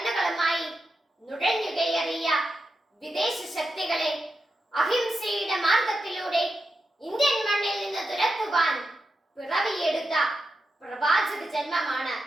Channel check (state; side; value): normal; both; correlation 0.88